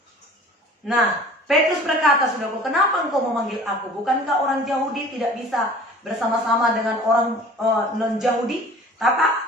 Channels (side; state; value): both; normal; correlation 0.45